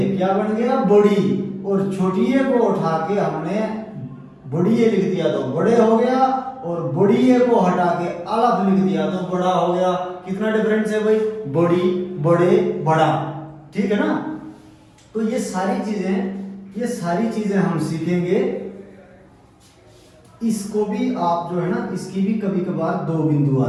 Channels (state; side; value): identical; both; correlation 1.00